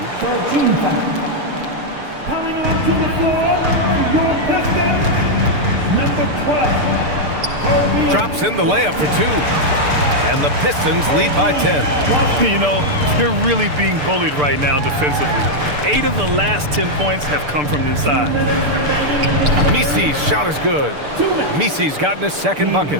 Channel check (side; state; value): left; late; 6.8 ms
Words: Coming onto the floor, your Pistons, number 12. Drops in the layup for 2. And the Pistons lead by 10. You know, they're really being bullied right now defensively. 8 of the last 10 points have come from inside. Messi's shot is good. Messi's gotten his second bucket.